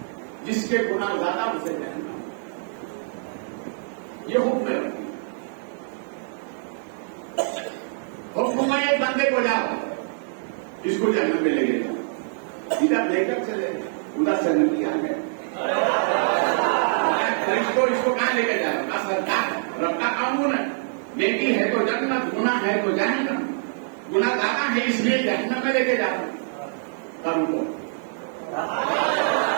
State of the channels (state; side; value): silent; left; digital silence